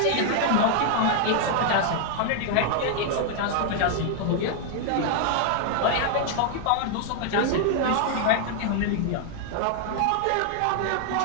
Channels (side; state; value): both; different; correlation 0.00